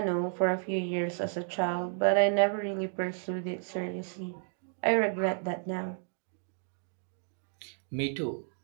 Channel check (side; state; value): left; silent; digital silence